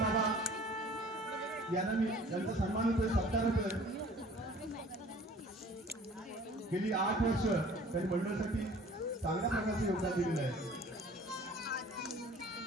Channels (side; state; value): both; normal; correlation 0.49